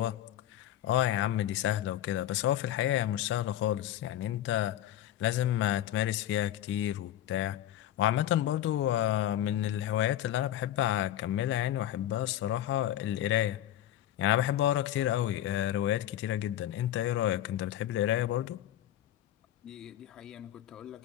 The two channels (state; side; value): quieter; right; 12.4 dB